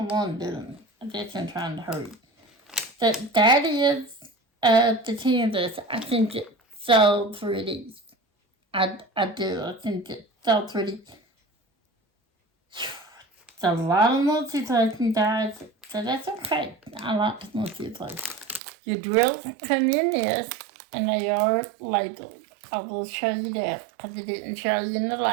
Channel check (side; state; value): left; drops out; at 18.6 s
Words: one doing. I guess I'm trying to hurry. That is the canvas. I think it's so pretty. I do. I think it's so pretty. It's a lot of multi-placing, guys, so that's okay. I like the multi-place. Your drills come in this, and they are labeled. I will show you that, because I didn't show you in the